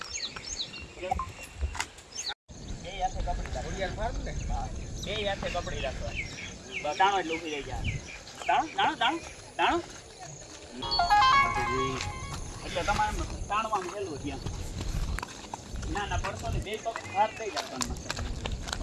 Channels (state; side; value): identical; both; correlation 1.00